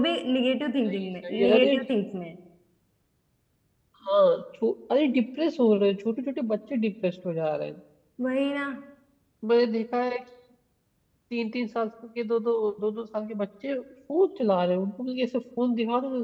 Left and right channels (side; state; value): both; identical; correlation 1.00